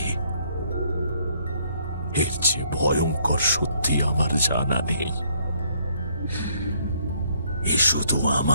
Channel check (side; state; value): both; inverted; correlation -0.67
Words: এর চেয়ে ভয়ঙ্কর সত্যি আমার জানা নেই। এ শুধু